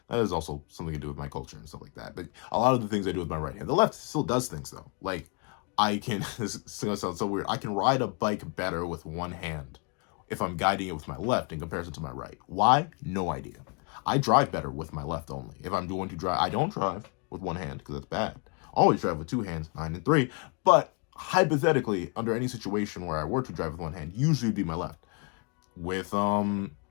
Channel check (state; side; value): quieter; right; 35.4 dB